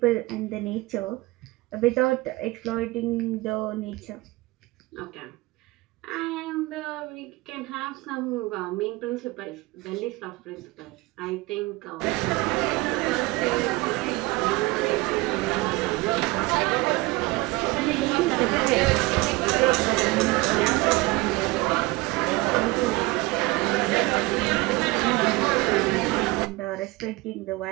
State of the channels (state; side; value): quieter; left; 22.0 dB